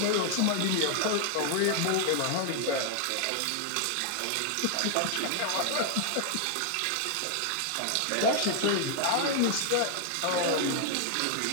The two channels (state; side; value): different; both; correlation 0.00